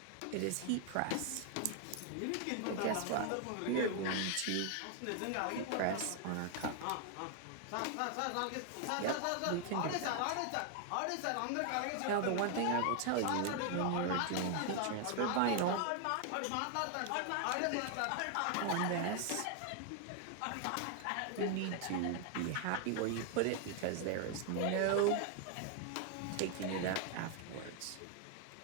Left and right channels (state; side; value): different; both; correlation 0.00